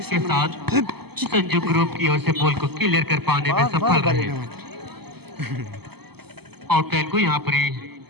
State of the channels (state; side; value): late; left; 0.96 ms